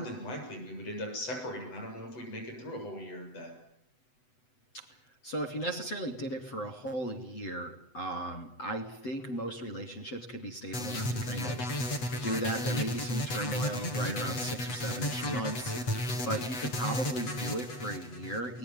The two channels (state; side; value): late; right; 8.0 ms